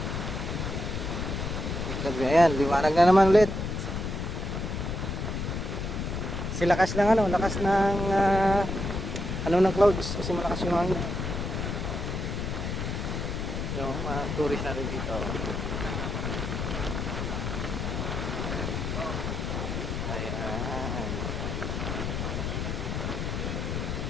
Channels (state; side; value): noise; left; rumble, 3 dB below the sound